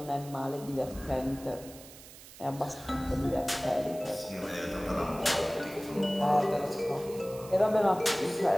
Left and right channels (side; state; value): right; noise; hiss, 18 dB below the sound